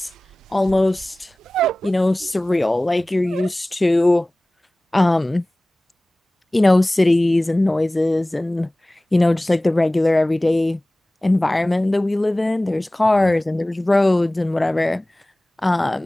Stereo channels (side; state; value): both; normal; correlation 0.98